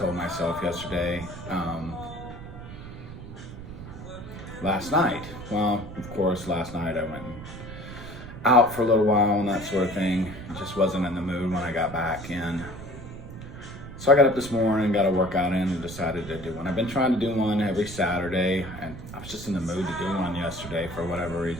myself yesterday, last night. Well, of course, last night I went out for a little while and that sort of thing. I just wasn't in the mood when I got back in. So I got up this morning, got a workout in, and decided to do one. I've been trying to do one every Saturday, and I was just in the mood to do one yesterday for whatever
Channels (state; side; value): noise; right; rumble, 12 dB below the sound